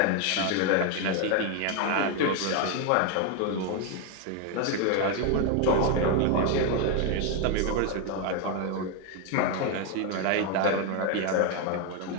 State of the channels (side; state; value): both; different; correlation 0.01